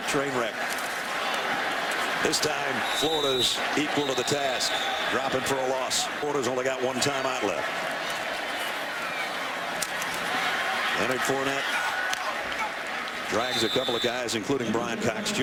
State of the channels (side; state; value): both; identical; correlation 1.00